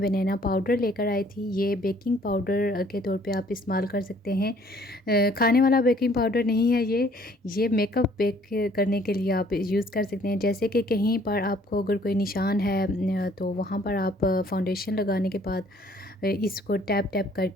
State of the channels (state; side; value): normal; both; correlation 0.59